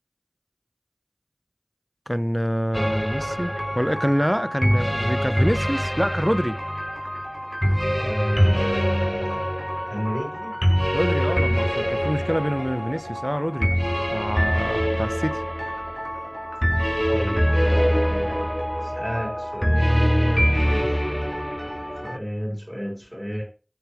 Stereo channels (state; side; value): identical; both; correlation 1.00